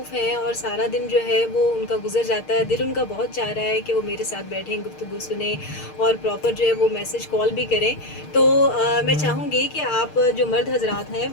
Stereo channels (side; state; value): right; late; 6.5 ms